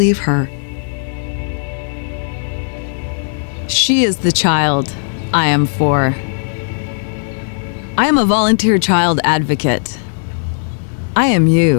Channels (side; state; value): right; silent; digital silence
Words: her. She is the child I am for. I am a volunteer child advocate. I am